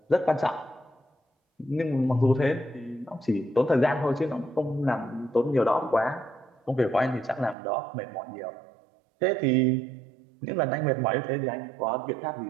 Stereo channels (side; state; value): left; drops out; at 7.6 s